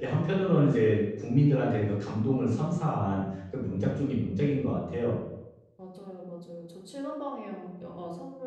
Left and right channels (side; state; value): both; identical; correlation 1.00